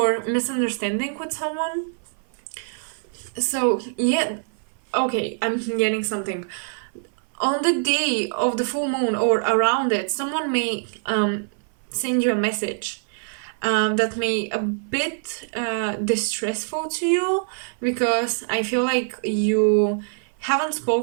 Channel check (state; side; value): silent; left; 56 dB below the other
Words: misunderstanding with someone. So, yeah, okay, I'm getting something. On the day of the full moon or around it, someone may send you a message that may a bit distressful to you, because I feel like you haven't